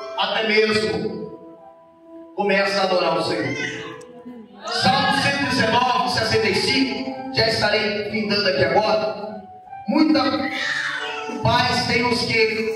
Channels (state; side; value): identical; both; correlation 1.00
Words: até mesmo começa a adorar o Senhor. Salmo 119, 65, já estarei findando aqui agora. Muita paz tem os